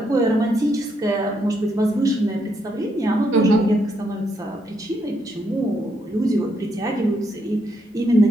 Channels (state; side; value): normal; both; correlation 0.76